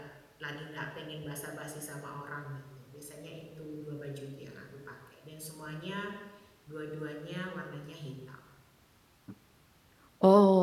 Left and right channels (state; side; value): identical; both; correlation 1.00